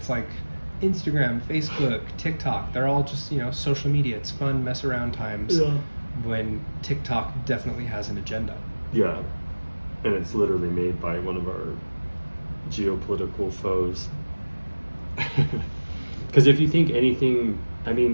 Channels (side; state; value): both; inverted; correlation -1.00